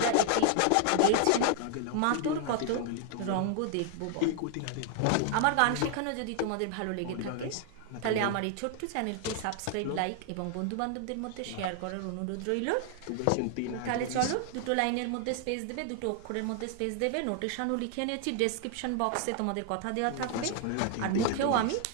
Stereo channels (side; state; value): both; different; correlation 0.00